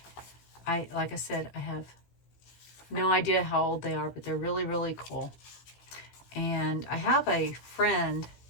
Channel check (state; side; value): late; right; 16 ms